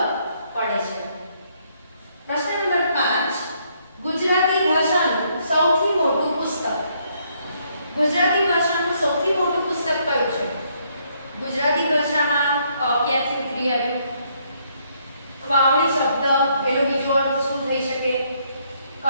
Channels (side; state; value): both; inverted; correlation -0.71